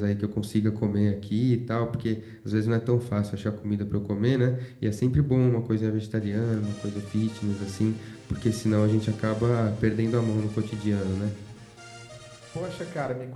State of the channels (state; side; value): identical; both; correlation 1.00